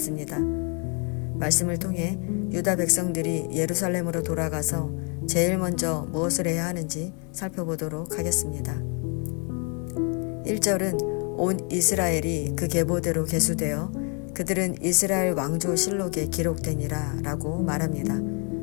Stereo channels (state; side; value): quieter; right; 36.2 dB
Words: 말씀을 통해 유다 백성들이 예루살렘으로 돌아가서 제일 먼저 무엇을 해야 하는지 살펴보도록 하겠습니다. 1절은 온 이스라엘이 그 계보대로 계수되어 그들은 이스라엘 왕조 실록에 기록되니라 라고 말합니다.